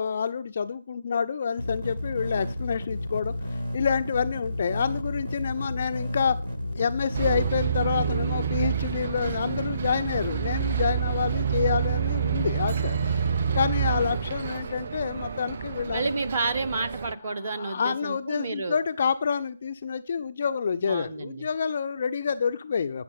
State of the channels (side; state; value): both; inverted; correlation -0.73